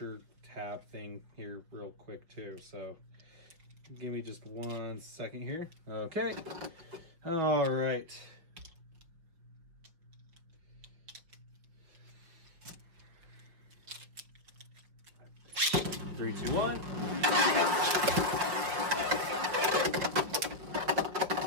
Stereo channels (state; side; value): late; left; 5.9 ms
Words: tab thing here real quick too, so give me just 1 second here. Okay. All right. Three, two, 1.